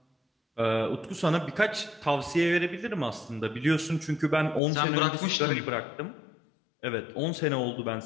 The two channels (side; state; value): right; drops out; at 4.6 s